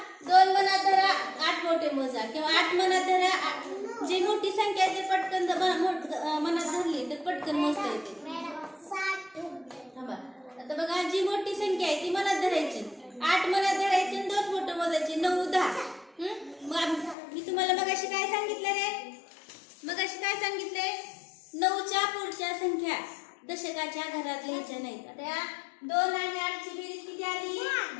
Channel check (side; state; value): right; drops out; at 17.2 s